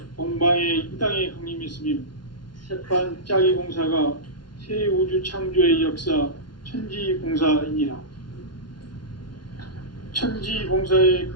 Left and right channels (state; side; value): late; right; 0.71 ms